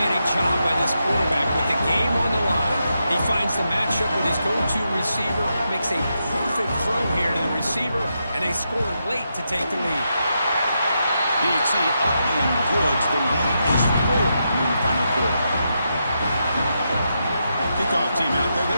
job by this quarterback with the game on the line. He finds the matchup with his go-to receiver, makes a perfect throw here to the receiver, and they score late to take the lead. BT up and good. The lead is 4 in the final quarter. Kickoff team out there.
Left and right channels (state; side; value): inverted; both; correlation -0.84